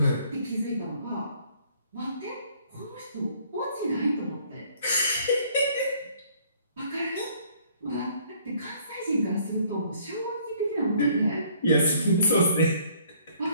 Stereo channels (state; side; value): inverted; both; correlation -0.61